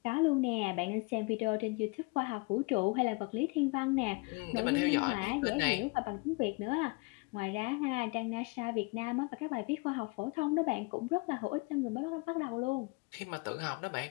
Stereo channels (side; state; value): right; quieter; 28.5 dB